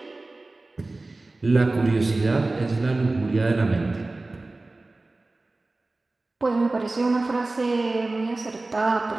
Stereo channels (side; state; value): left; quieter; 3.1 dB